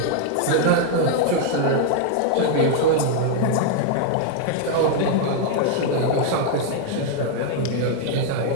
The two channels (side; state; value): both; different; correlation 0.00